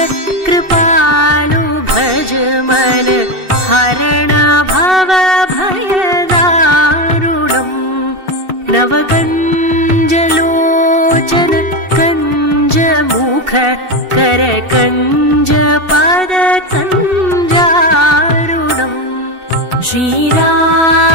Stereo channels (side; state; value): left; late; 2.7 ms